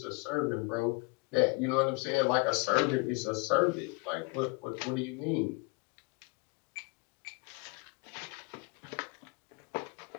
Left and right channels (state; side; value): quieter; right; 29.3 dB